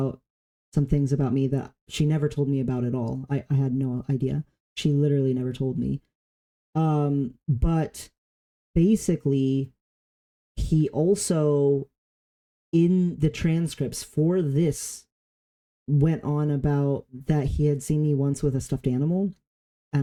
some things about me that she never told me about at all. I had no idea. She literally never told me. But basically, he also, in the transcripts for this, went on about that he had seen me once with a stuffed animal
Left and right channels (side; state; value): both; identical; correlation 1.00